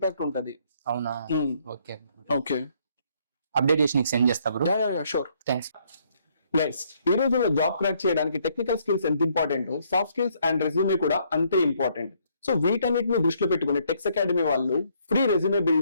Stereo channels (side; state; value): both; inverted; correlation -0.68